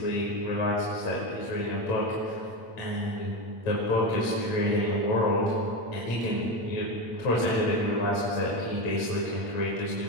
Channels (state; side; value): late; right; 8.7 ms